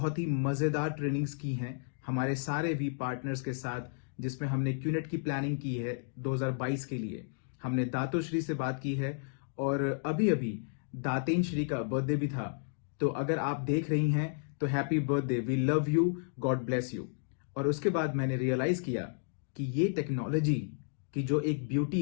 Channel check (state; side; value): silent; right; digital silence